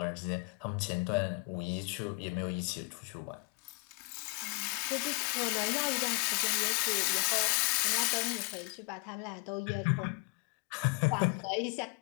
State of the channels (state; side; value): quieter; right; 30.4 dB